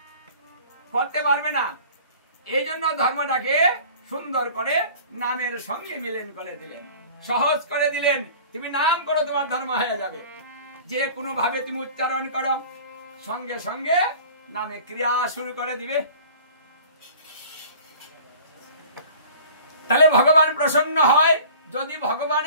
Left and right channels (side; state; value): both; inverted; correlation -0.45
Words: করতে পারবে না। এই জন্য ধর্মটাকে সুন্দর করে নামের সঙ্গে মিলন করে দিলেন, সহজ করে দিলেন। তুমি নাম করো, তোমার ধর্ম হয়ে যাবে। যে কোনো ভাবে তুমি উচ্চারণ করো, সঙ্গে সঙ্গে নামে ক্রিয়া শুরু করে দিবে। তাহলে ভগবান প্রসন্ন হয় যদি